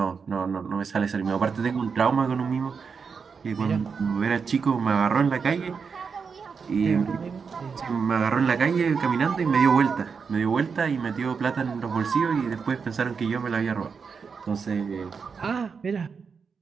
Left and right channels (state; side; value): quieter; left; 5.7 dB